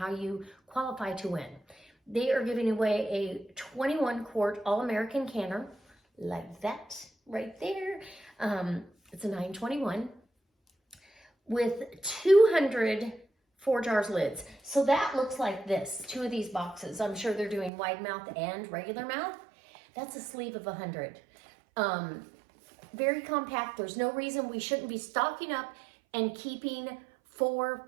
you qualify to win. They are giving away a 21 quart All-American canner, like that right there. It's a 921 with 200 4 jars lids. So that looks like this, 2 of these boxes. I'm sure they're doing wide mouth and regular mouth. That's a sleeve of 100. Very compact. There's no reason we shouldn't be stocking up and keeping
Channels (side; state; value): left; drops out; at 17.7 s